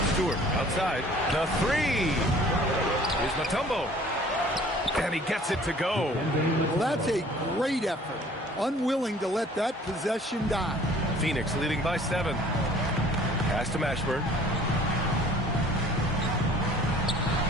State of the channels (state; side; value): normal; both; correlation 0.52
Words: Stewart outside. The 3. Here's Mutombo. And he gets it to go. Well, that's a great effort. Unwilling to let that possession die. Phoenix leading by 7. Pass to Mashburn.